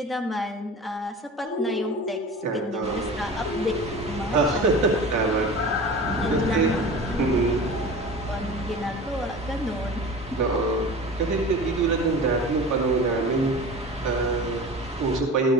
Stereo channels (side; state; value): both; normal; correlation 0.35